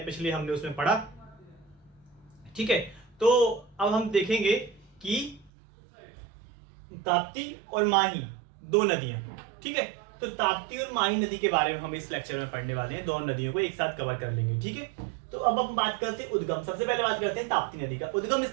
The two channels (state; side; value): drops out; left; at 5.5 s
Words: पिछले हमने उसमें पढ़ा, ठीक है। तो अब हम देखेंगे कि ताप्ती और माही दो नदियां, ठीक है। तो ताप्ती और माही नदी के बारे में हम इस लेक्चर में पढ़ने वाले हैं। दोनों नदियों को एक साथ कवर कर लेंगे, ठीक है। तो अब हम बात करते हैं उद्गम। सबसे पहले बात करते हैं ताप्ती नदी का। उद्गम